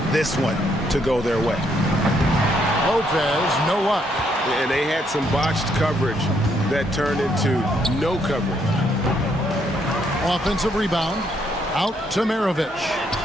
this one to go their way. Lopez, no luck. And they had some botched coverage that turned into no coverage. Offensive rebound. Out to Maravich.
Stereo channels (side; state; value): both; normal; correlation 0.72